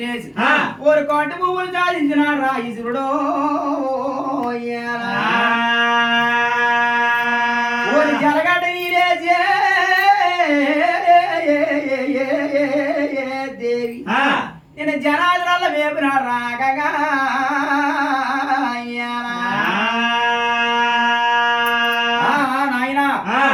రేసి ఓరి కోట పువ్వులు సాధించినాడు రా ఈశ్వరుడు ఓరి జలగడ్డ నీరేసి దేవి నేను జనాదరాల వేపున రాగగా నాయన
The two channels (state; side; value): identical; both; correlation 1.00